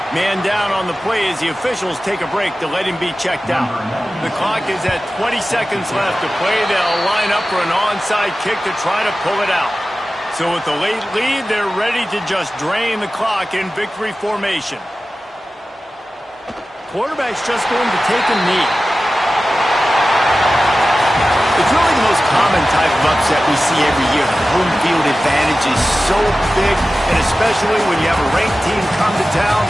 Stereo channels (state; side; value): normal; both; correlation 0.95